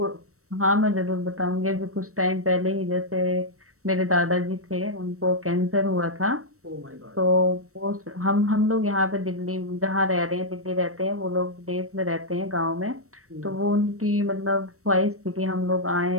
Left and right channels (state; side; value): late; left; 0.64 ms